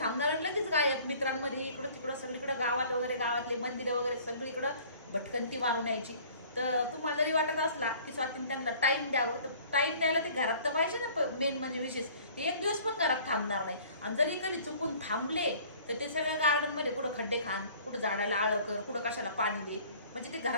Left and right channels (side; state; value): both; inverted; correlation -0.51